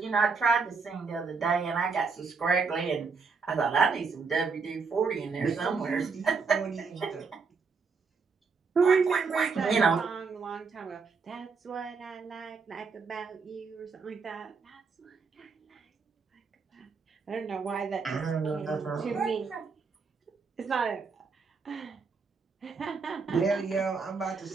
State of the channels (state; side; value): quieter; left; 5.0 dB